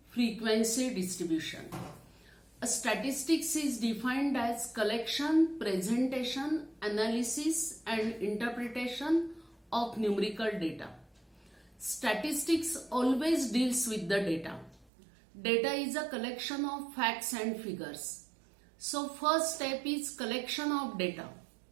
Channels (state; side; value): drops out; left; at 14.9 s